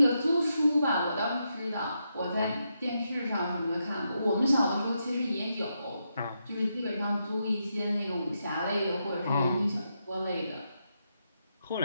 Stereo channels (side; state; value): both; inverted; correlation -0.83